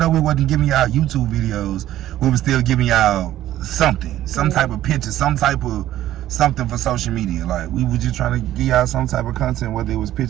we wasn't giving y'all YouTube videos, we were still giving y'all something. Some type of picture, some type of something for social media. Like, we were just trying to give y'all some type of content, whether it was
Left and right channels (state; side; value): quieter; left; 13.4 dB